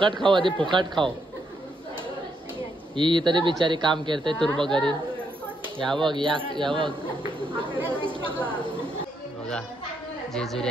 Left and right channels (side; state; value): both; normal; correlation 0.77